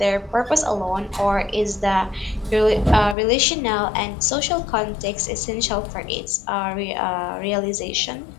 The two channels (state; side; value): drops out; right; at 3.2 s